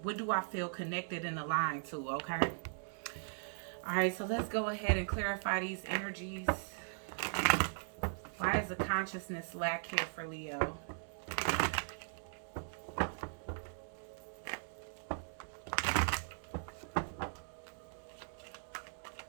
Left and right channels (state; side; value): silent; left; digital silence